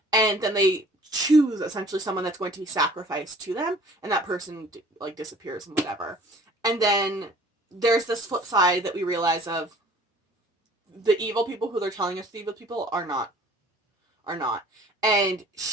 And then they choose essentially someone that's going to be sacrificed to them, and that person like disappears and whatever. And then there's this flip side that we realize of the evil people who they're telling us the evil people are not. And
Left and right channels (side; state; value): both; normal; correlation 0.51